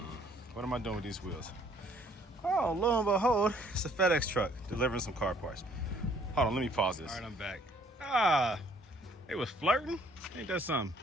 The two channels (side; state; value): both; normal; correlation 0.62